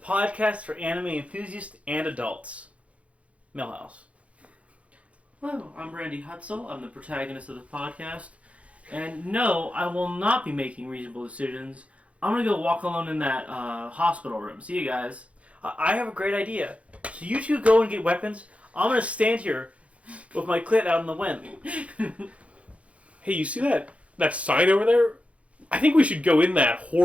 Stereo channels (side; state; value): left; late; 0.063 ms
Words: for anime enthusiasts and adults. Millhouse. Hello, I'm Randy Hutzel. I'm the protagonist of the podcast. And no, I will not be making reasonable decisions. I'm going to go walk alone in that hospital room. See you guys. I have a great idea. So you two go and get weapons. I'm going to stand here with my clit out in the wind. Hey, you see that sign over there? I think we should go in that